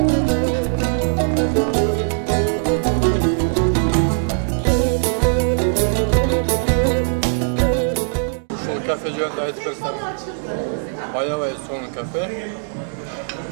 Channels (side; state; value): left; silent; digital silence